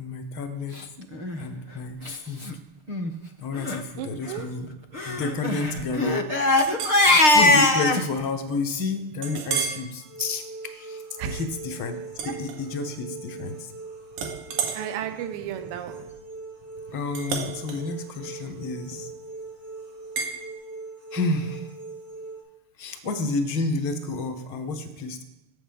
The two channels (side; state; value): left; late; 6.6 ms